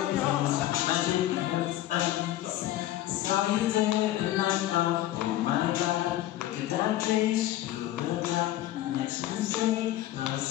Saw you there and I thought, oh my God, look at that face, you look like next Wednesday,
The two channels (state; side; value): quieter; right; 14.3 dB